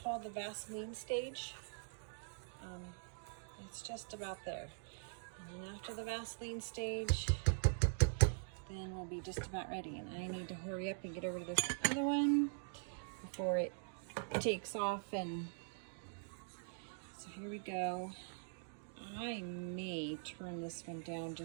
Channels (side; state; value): left; silent; digital silence